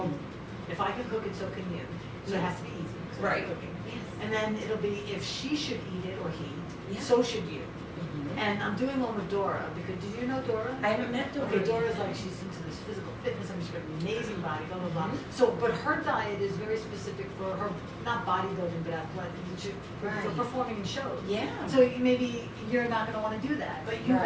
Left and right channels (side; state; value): both; identical; correlation 1.00